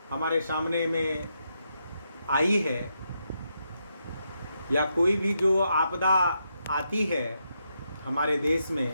हमारे सामने में आई है, या कोई भी जो आपदा आती है हमारे देश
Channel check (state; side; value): inverted; both; correlation -0.82